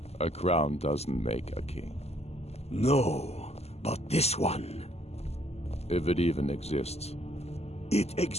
A crown doesn't make a king. No, but this one. If it even exists. It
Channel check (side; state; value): right; late; 0.30 ms